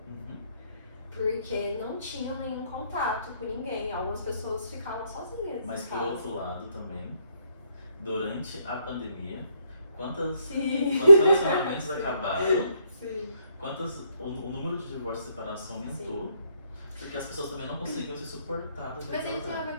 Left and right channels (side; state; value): both; inverted; correlation -0.73